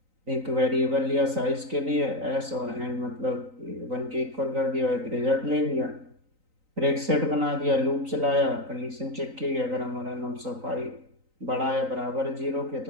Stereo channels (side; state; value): left; late; 3.9 ms